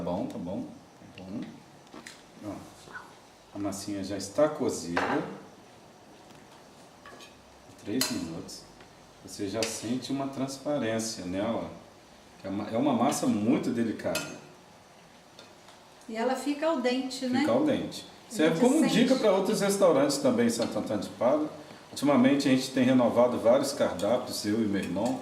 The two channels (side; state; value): both; identical; correlation 1.00